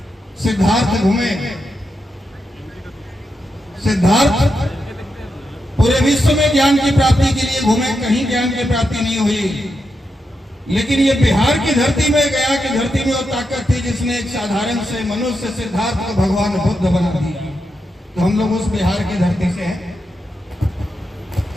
सिद्धार्थ घूमे, सिद्धार्थ पूरे विश्व में ज्ञान की प्राप्ति के लिए घूमे, कहीं ज्ञान की प्राप्ति नहीं हुई। लेकिन ये बिहार की धरती में, गया की धरती में वो ताकत थी जिसने एक साधारण से मनुष्य सिद्धार्थ को भगवान बुद्ध बना दिया। तो हम लोग उस बिहार की धरती से हैं।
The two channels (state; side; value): normal; both; correlation 0.86